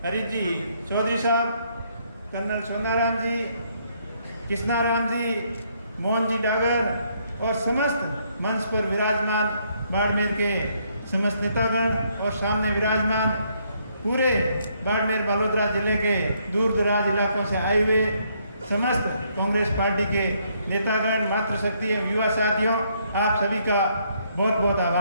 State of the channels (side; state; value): both; inverted; correlation -0.71